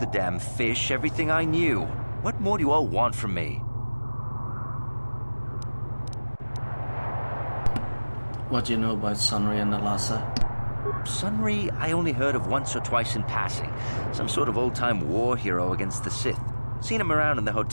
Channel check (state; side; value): inverted; both; correlation -1.00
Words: damn fish everything I knew. What more do you all want from me? What do you know about Sunry and Alasa? Sunry, I only heard of once or twice in passing. Some sort of old-time war hero against the Sith. Seen him around in the